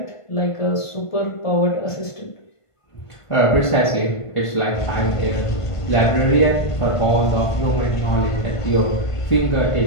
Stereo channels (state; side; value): late; right; 1.5 ms